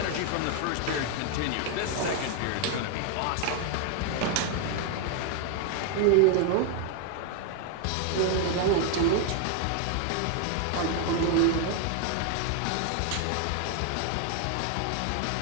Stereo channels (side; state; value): both; different; correlation 0.00